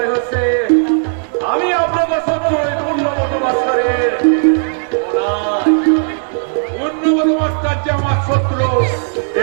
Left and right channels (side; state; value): left; silent; digital silence